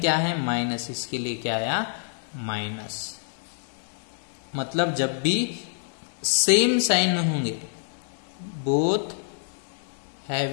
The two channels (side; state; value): right; silent; digital silence